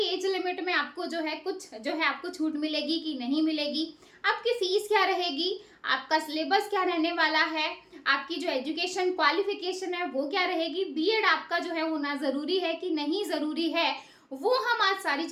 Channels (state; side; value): identical; both; correlation 1.00